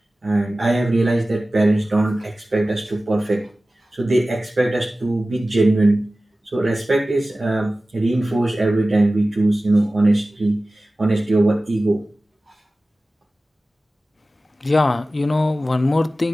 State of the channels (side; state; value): both; normal; correlation 0.96